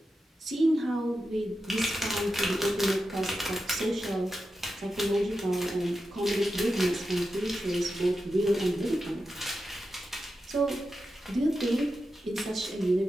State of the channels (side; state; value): both; normal; correlation 0.90